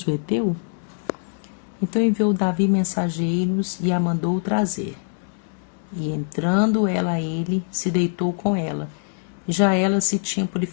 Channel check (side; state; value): right; silent; 63 dB below the other